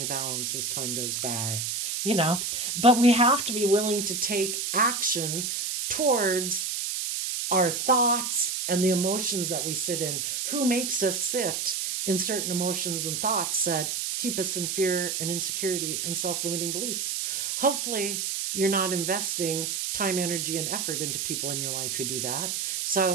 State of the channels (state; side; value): noise; right; hiss, 2 dB below the sound